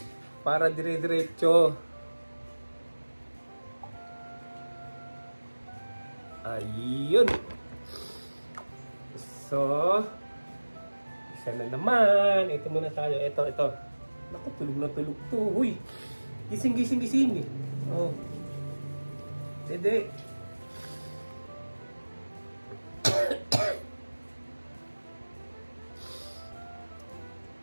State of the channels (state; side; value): inverted; both; correlation -1.00